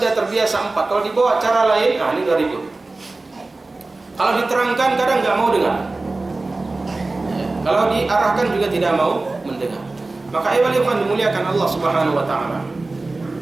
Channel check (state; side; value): quieter; left; 3.2 dB